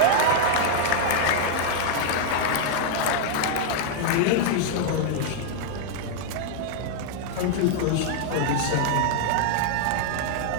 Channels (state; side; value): different; both; correlation 0.00